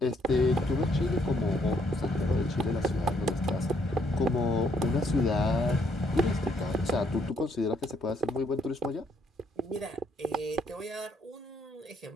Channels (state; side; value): normal; both; correlation 0.70